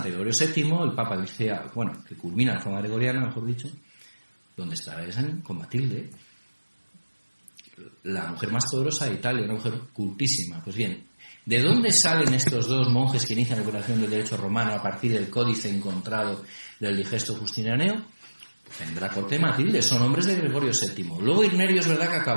Gregorio VII, el Papa dice, que culmina la reforma gregoriana, mejor dicho, donde está con Matilde, la mujer más poderosa de Italia, una mujer cultísima. Pues bien, ¿de dónde salen estos dos monjes que inician la operación del derecho romano a partir del códice encontrado del Digesto Justinianeo? En la corte de Matilde, son hombres de Gregorio VII. Luego Irnerio es verdad que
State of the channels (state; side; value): inverted; both; correlation -1.00